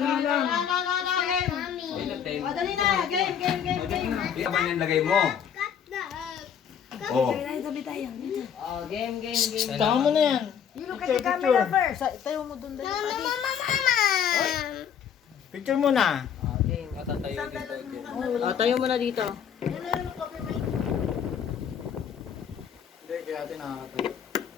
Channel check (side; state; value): right; quieter; 8.2 dB